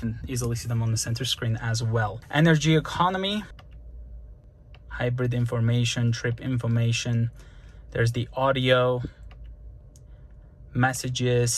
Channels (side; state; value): both; identical; correlation 1.00